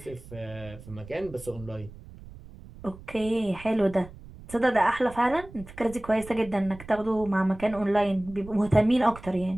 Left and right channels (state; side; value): noise; right; rumble, 17 dB below the sound